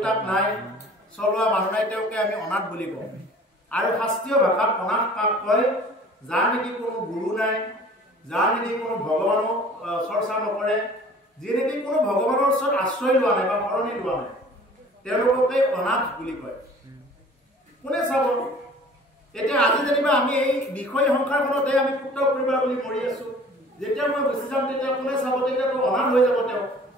নাই চলোৱা মানুহ নাই তেওঁকে আমি অনাথ বুলি কওঁ আৰু শাস্ত্ৰীয় ভাষাত অনাথ কাক কয় যাৰ নেকি কোনো গুৰু নাই যাৰ নেকি কোনো ভগৱানক চৰ্চা নকৰে যি নেকি কোনো ভগৱানৰ ওচৰত আশ্ৰয় লোৱা নাই বা শৰণি লোৱা নাই তেওঁলোককে অনাথ বুলি কয় কোনে চাব এতিয়া আজি যেনিবা আমি এই বিষয় সংসাৰখনতে আমি পুত্ৰ পৰিবাৰ বুলি মৰি আছো যেতিয়া মই গুচি যাম তেতিয়া কোনে চাব তেতিয়াতো অনাথ হৈ যাব তেওঁ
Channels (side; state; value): both; normal; correlation 0.48